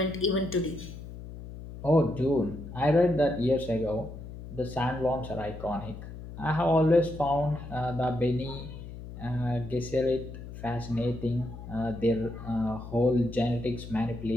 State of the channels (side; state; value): left; noise; hum, 12 dB below the sound